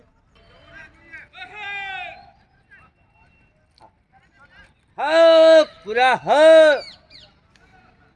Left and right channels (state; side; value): identical; both; correlation 1.00